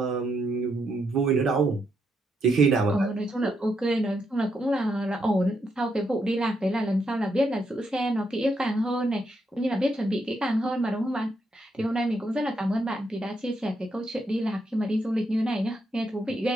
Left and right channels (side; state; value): both; normal; correlation 0.79